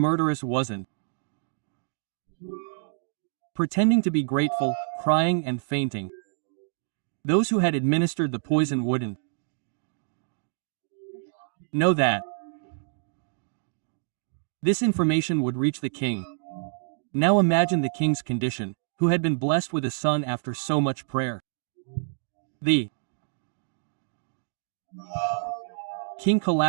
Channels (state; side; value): silent; left; digital silence